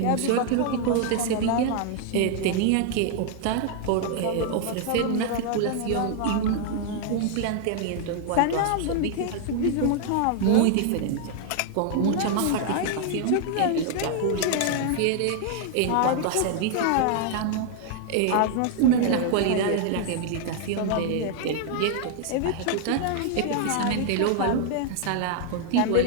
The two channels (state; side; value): different; both; correlation 0.00